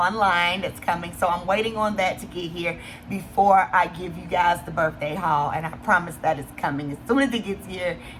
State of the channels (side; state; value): both; identical; correlation 1.00